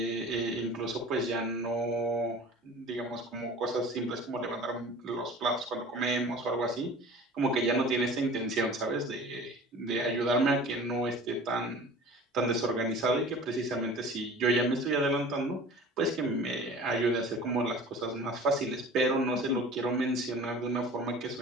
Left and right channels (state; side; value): normal; both; correlation 0.42